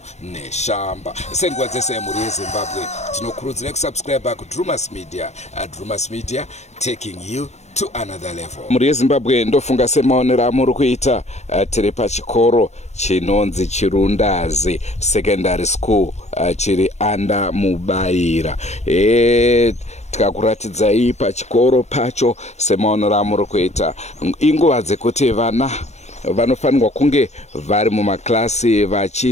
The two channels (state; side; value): late; right; 0.32 ms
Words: Neshamba. Senguva dzese muri yeZimbabwe tinokurudzira kusubscribe kuDrumas Media. Drumas Media taking you to another level. Muri yeZimbabwe ndofunga semaonero amuri kuita. Tiri pachikoro chinonzi Chirundazi Secondary School chiri anda Mubaira. Tikakuratidzai pachikoro pacho semaonero amuri kuita. Inguva dzekuti vana vanofanirwa kunge vari mumaklasi